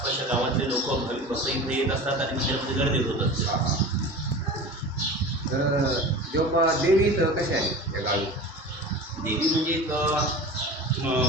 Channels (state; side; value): normal; both; correlation 0.34